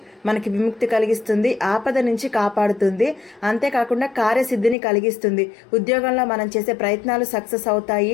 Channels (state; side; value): drops out; right; at 4.8 s